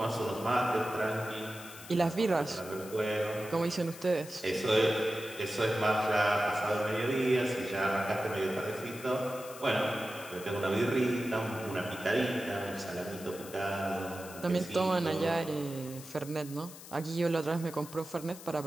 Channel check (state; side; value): noise; left; hiss, 15 dB below the sound